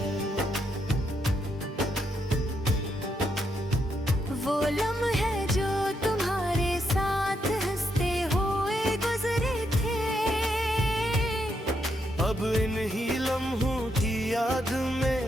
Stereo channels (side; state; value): both; normal; correlation 0.79